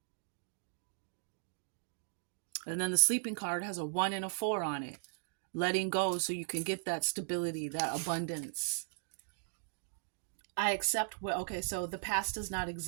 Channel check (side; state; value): left; silent; digital silence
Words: And then the sleeping card has a 1 and a 4 on it. Letting go so you can get that stability, that abundance. I accept what, okay, so the past does not